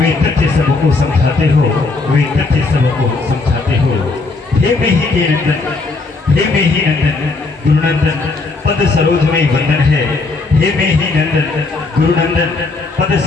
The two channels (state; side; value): quieter; right; 3.7 dB